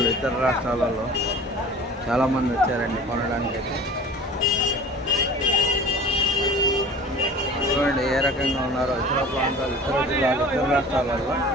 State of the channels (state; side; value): normal; both; correlation 0.43